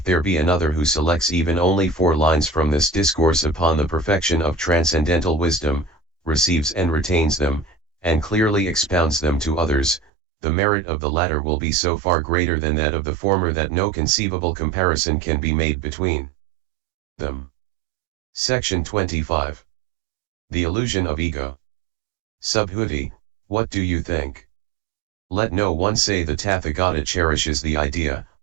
there be another who selects even only 4 lines from this discourse upon the perfection of transcendental wisdom, receives and retains them, and clearly expounds them to others, the merit of the latter will be so far greater than that of the former that no conceivable comparison can be made between them. Section 25. The illusion of ego. Subhuti, what do you think? Let no one say the Tathagata cherishes the idea,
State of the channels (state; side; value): drops out; left; at 10.1 s